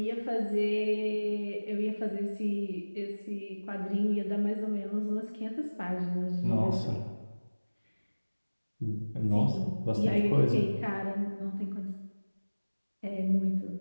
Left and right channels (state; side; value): inverted; both; correlation -1.00